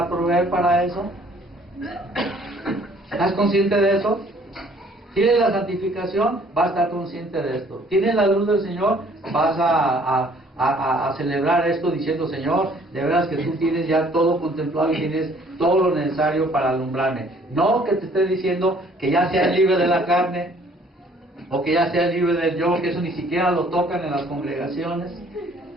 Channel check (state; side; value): normal; both; correlation 0.59